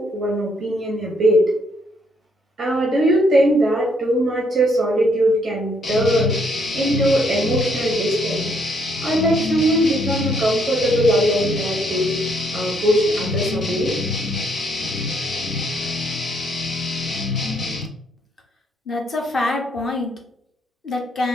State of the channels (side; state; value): both; normal; correlation 0.70